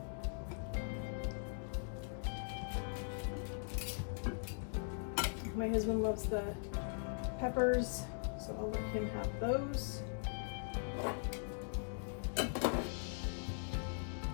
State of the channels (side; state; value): right; silent; digital silence